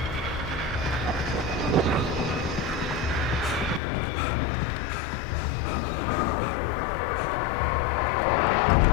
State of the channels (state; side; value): drops out; right; at 3.8 s